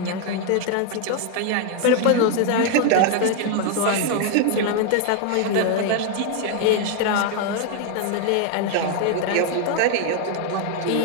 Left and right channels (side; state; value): both; different; correlation 0.00